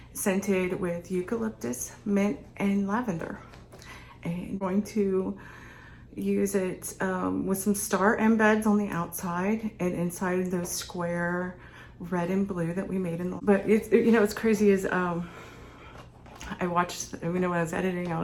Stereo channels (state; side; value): identical; both; correlation 1.00